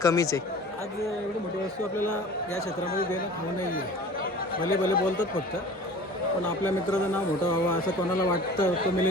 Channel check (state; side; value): normal; both; correlation 0.42